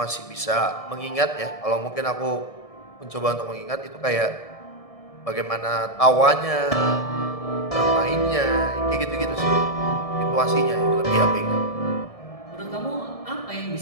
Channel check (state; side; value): late; right; 1.7 ms